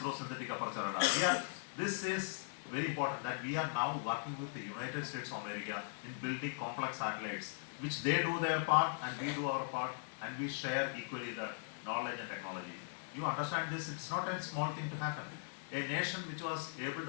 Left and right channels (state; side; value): silent; right; digital silence